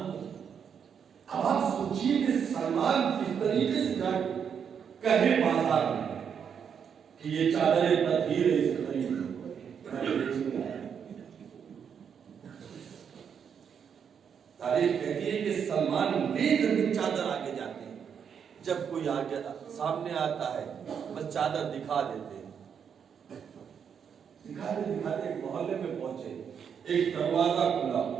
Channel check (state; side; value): quieter; left; 7.4 dB